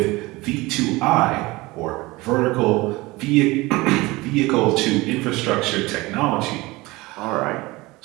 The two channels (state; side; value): quieter; left; 21.5 dB